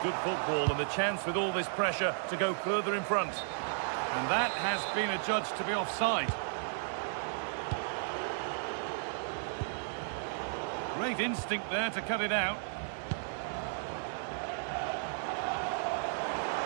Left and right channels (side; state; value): left; silent; 55 dB below the other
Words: good football and the chance with all this pressure to go further in front. And that has been adjudged to be offside. Great instinct there to cut it out.